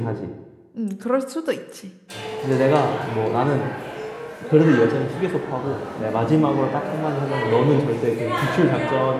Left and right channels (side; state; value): both; identical; correlation 1.00